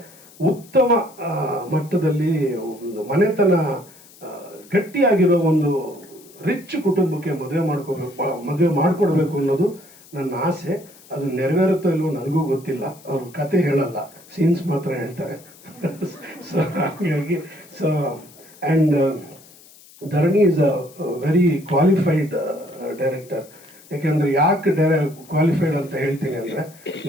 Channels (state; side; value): noise; left; hiss, 24 dB below the sound